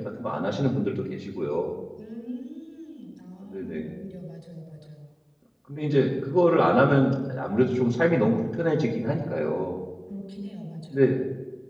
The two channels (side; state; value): both; identical; correlation 1.00